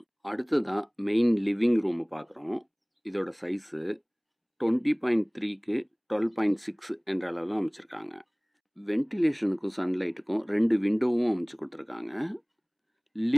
அடுத்ததான் மெயின் லிவிங் ரூமை பார்க்குறோம். இதோட சைஸு 20.3க்கு 12.6 என்ற அளவில் அமைச்சிருக்காங்க. வென்டிலேஷனுக்கும் சன்லைட்டுக்கும் 2 விண்டோவும் அமைச்சு கொடுத்துருக்காங்க.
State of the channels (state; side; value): identical; both; correlation 1.00